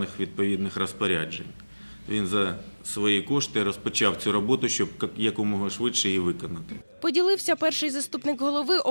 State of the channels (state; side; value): inverted; both; correlation -1.00